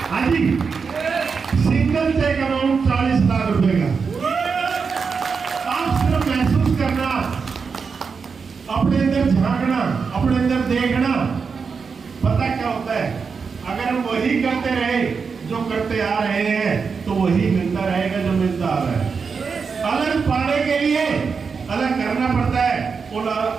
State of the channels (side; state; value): left; quieter; 5.4 dB